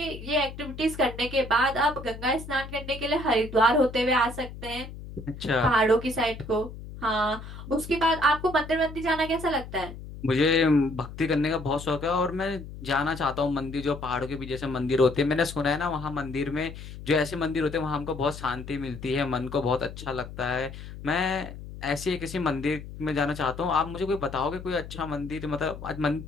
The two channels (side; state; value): left; noise; hum, 12 dB below the sound